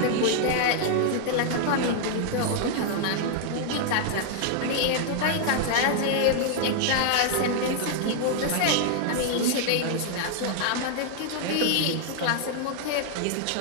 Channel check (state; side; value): different; both; correlation 0.00